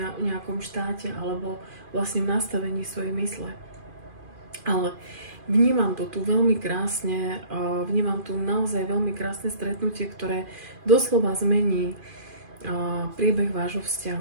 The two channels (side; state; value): left; late; 2.4 ms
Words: nejakom štáte alebo vlastne v nastavení svojej mysle. Ale vnímam to tu veľmi krásne, vnímam tu naozaj veľmi krásne stretnutie, ktoré doslova zmení priebeh vášho